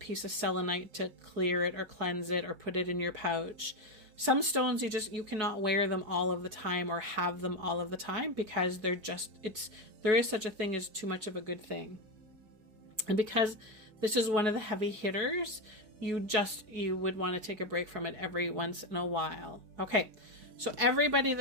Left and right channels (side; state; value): left; late; 4.7 ms